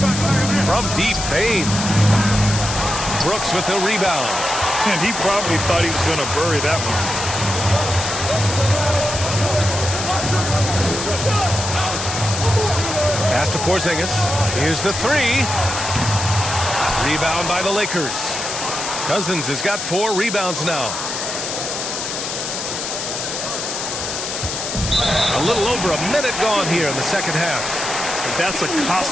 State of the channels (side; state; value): left; noise; hiss, 4 dB below the sound